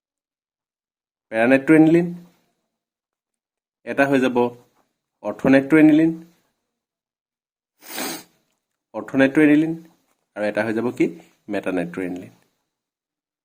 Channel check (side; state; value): both; identical; correlation 1.00